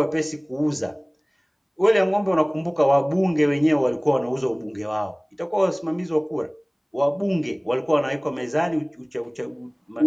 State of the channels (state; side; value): identical; both; correlation 1.00